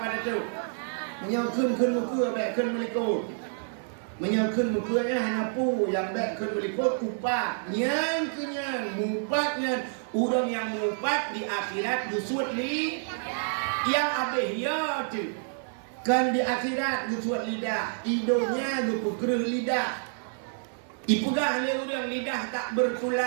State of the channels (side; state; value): left; silent; 59 dB below the other